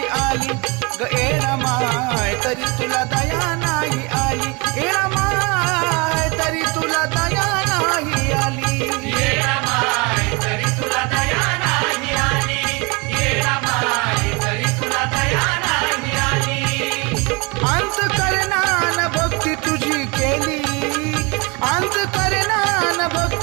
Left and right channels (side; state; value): left; quieter; 28.4 dB